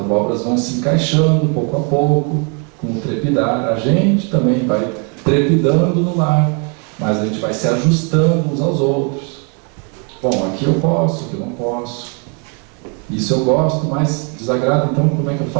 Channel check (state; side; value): quieter; left; 37.2 dB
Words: vão se encaixando pouco a pouco, com o trepidar. A gente também vai trepidando no lar, mas a gente vai se ajustando uns aos outros. Bom, aqui eu posso, aqui eu não posso. Isso eu gosto, mas desagrada, então como é que eu